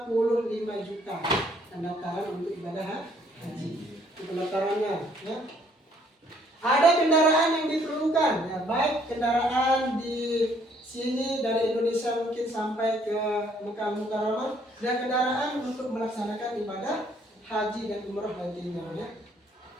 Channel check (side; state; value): both; normal; correlation 0.64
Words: juta pendaftaran untuk ibadah haji. Itu pendaftarannya ya. Ada kendaraan yang diperlukan, ya, baik kendaraan di sini dari Indonesia mungkin sampai ke Mekah Mukarramah, dan kendaraan untuk melaksanakan ibadah haji dan umrah nantinya. Ya.